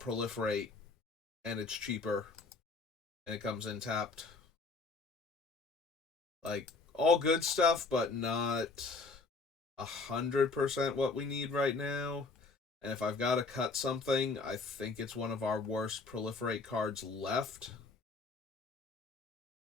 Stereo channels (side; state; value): right; quieter; 4.0 dB